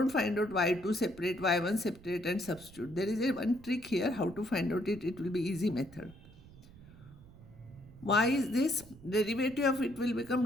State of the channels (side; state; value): right; noise; rumble, 21 dB below the sound